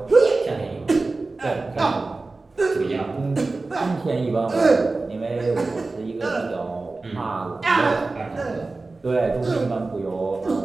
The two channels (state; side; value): quieter; left; 3.5 dB